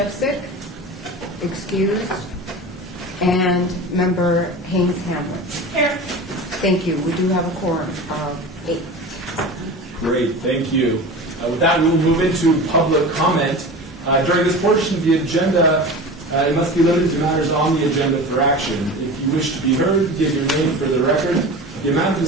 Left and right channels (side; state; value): both; normal; correlation 0.32